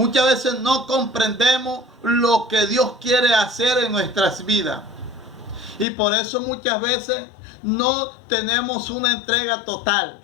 veces no comprendemos lo que Dios quiere hacer en nuestras vidas. Y por eso muchas veces no tenemos una entrega total.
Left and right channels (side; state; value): right; drops out; at 5.9 s